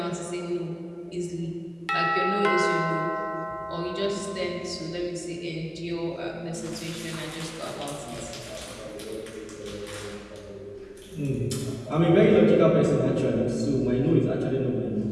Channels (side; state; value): both; identical; correlation 1.00